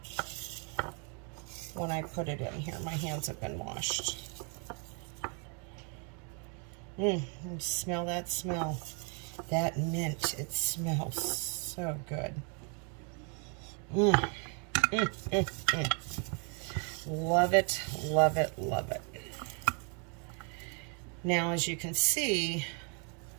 When I put it in here, my hands have been washed. Smell that smell. That mint, it smells so good. Love it, love it, love it. Now, as you can see,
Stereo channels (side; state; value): left; quieter; 38.0 dB